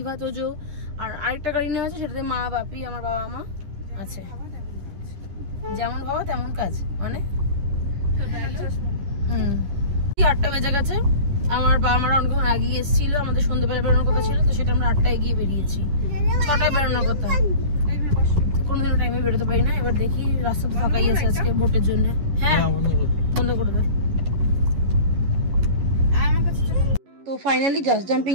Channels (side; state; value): left; late; 11 ms